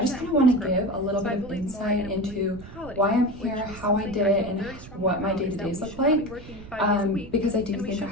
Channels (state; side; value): noise; right; rumble, 15 dB below the sound